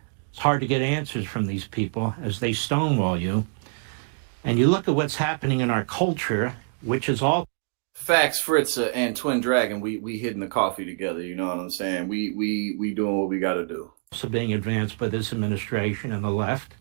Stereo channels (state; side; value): silent; left; digital silence